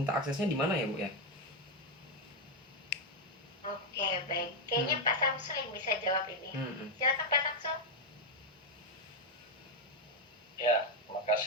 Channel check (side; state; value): both; normal; correlation 0.03